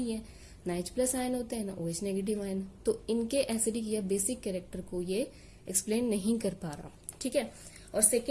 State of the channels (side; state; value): both; identical; correlation 1.00